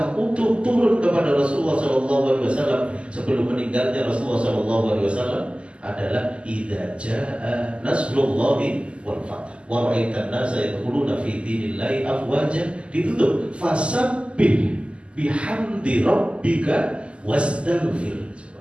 utuh turun kepada Rasulullah SAW sebelum meninggalnya Rasulullah SAW adalah idza jaa nasrullahi wal fath wa ra'aitan nasa yadkhuluna fi dinillahi afwaja, ditutup fasabbih bihamdi rabbika wastaghfir.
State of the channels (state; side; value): late; left; 0.054 ms